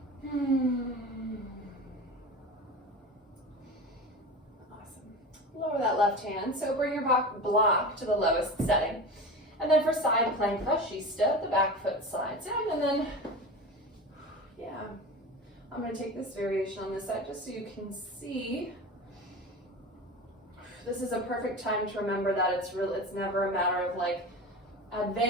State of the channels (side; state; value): both; normal; correlation 0.30